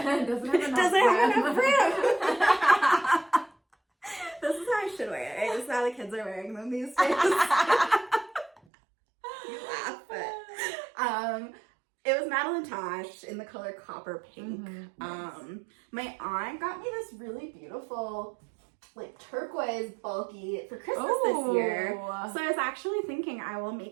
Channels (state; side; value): drops out; left; at 8.6 s